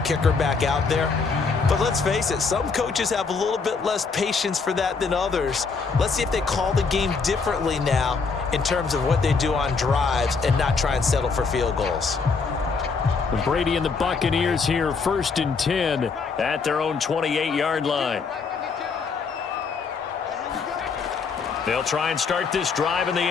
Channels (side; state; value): right; quieter; 4.9 dB